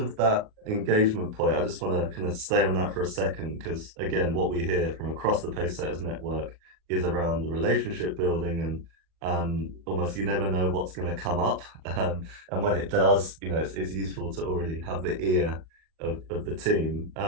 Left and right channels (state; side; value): late; left; 38 ms